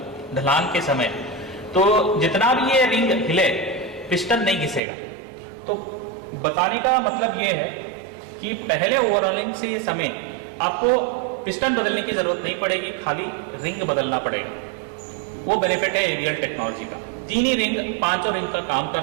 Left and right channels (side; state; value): left; drops out; at 4.8 s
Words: ढलान के समय, तो जितना भी ये रिंग हिले पिस्टन नहीं घिसेगा। तो बताने का मतलब ये है कि पहले ओवरऑलिंग से समय आपको पिस्टन बदलने की जरूरत नहीं पड़ेगी, खाली रिंग बदलना पड़ेगा। वो बेनिफिट है एवीएल टेक्नोलॉजी का। 3 ही रिंग 5 रिंग का काम